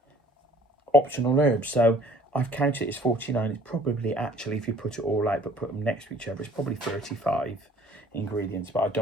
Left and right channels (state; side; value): normal; both; correlation 0.54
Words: optional herbs. So I've counted it as 49. It's probably, actually, if you put it all out but put them next to each other, it's probably 35 ingredients. But I